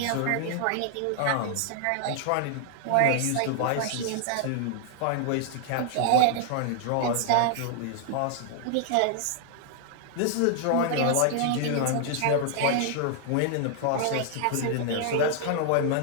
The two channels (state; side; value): different; both; correlation 0.00